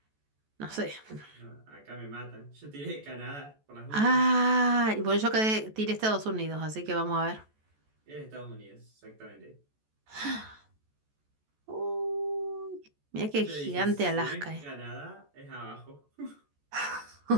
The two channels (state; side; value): late; left; 14 ms